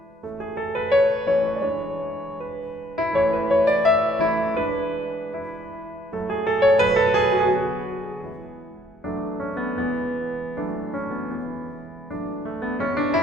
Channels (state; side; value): normal; both; correlation 0.64